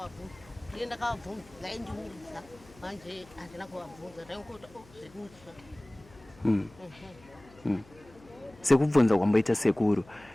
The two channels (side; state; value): left; noise; hum, 24 dB below the sound